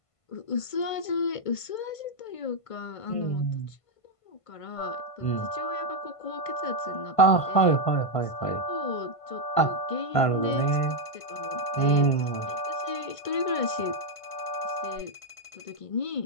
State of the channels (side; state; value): right; late; 1.5 ms